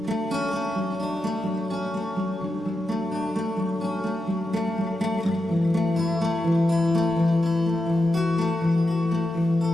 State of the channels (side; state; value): both; normal; correlation 0.88